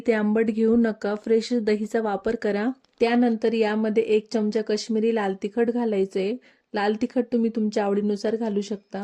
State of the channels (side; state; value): both; identical; correlation 1.00